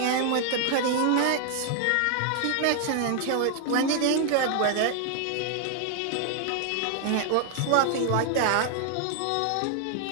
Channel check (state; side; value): different; both; correlation 0.00